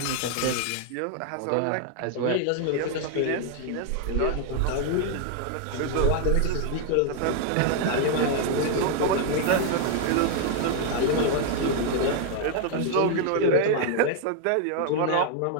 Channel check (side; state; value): both; different; correlation 0.00